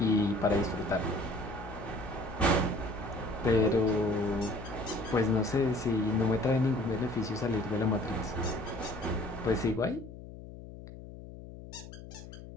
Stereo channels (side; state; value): left; noise; hum, 14 dB below the sound